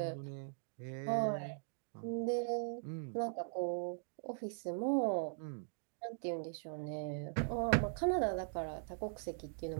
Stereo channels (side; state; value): left; silent; digital silence